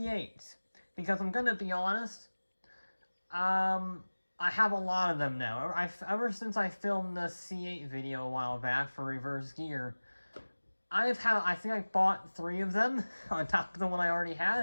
Because I'm gonna be honest, I have a lot of them now. Ever since I filmed the C8 video a while back for reverse gear, I think I bought 3 of them on top of the one I already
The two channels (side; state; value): both; inverted; correlation -1.00